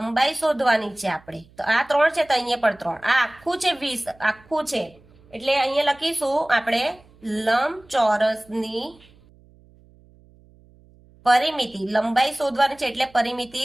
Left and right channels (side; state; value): right; noise; hum, 28 dB below the sound